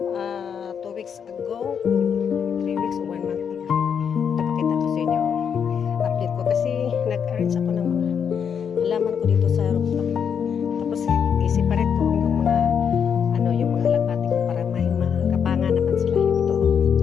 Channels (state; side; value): quieter; right; 7.4 dB